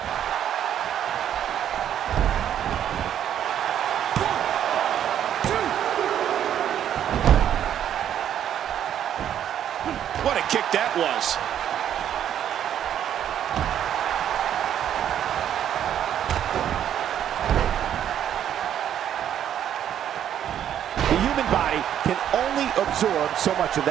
What a kick that was. The human body can only absorb so much of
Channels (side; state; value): left; quieter; 10.1 dB